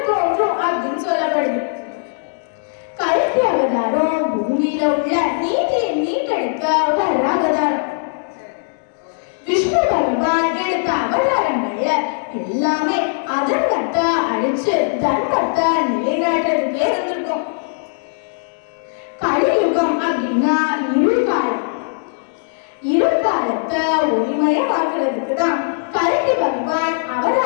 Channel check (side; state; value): right; silent; digital silence